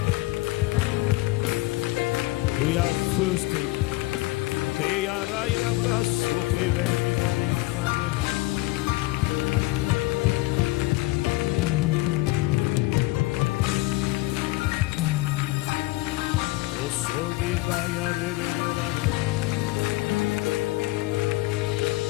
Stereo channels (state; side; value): quieter; right; 20.4 dB